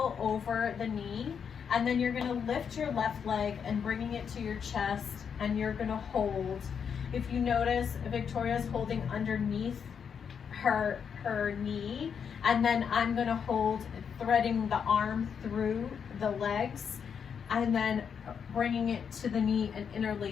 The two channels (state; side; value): quieter; right; 7.1 dB